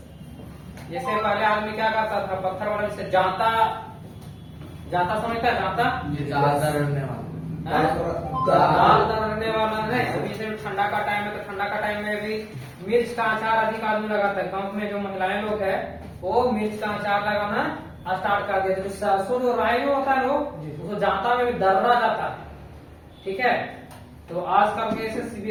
जैसे पहले आदमी क्या करता था, पत्थर वाले से जाता, जाता समझता है? जाता दाल रखने वाला है। अभी से ठंडा का टाइम है, तो ठंडा का टाइम में भी मिर्च का अचार अधिक आदमी लगाता है। गांव में जो महिलाएं लोग है वो मिर्च का अचार लगाना स्टार्ट कर दिया। तो सरसों जो राई में होता है उसको जाता में भी दर्रा जाता है, ठीक है। तो आजकल के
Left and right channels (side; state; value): both; identical; correlation 1.00